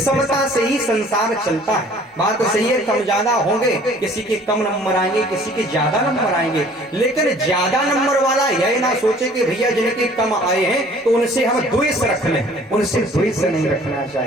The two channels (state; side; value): normal; both; correlation 0.53